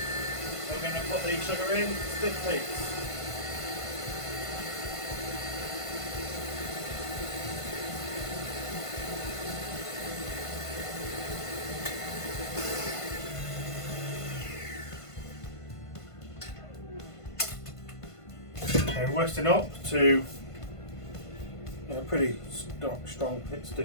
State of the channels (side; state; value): right; late; 1.5 ms